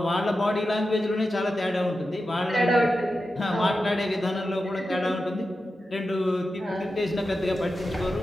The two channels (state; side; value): normal; both; correlation 0.91